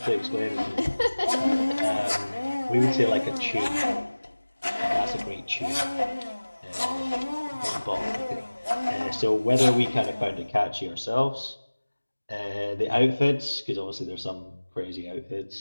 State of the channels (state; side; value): inverted; both; correlation -1.00